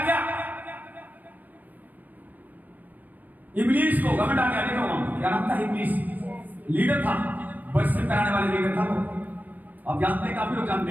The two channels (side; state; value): left; late; 0.082 ms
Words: गया, इब्लीस को घमंड आ गया। देखो वहां क्या नाम था, इब्लीस लीडर था, वर्शिप कराने वाले लीडर था वो, आप जानते हैं, काफी लोग जानते